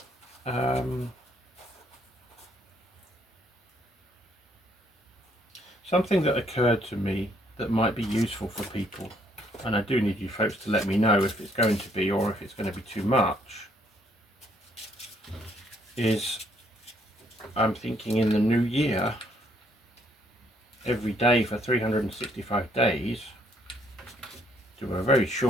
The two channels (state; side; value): normal; both; correlation 0.68